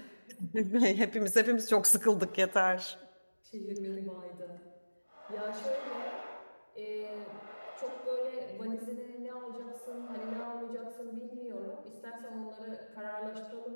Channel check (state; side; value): inverted; both; correlation -1.00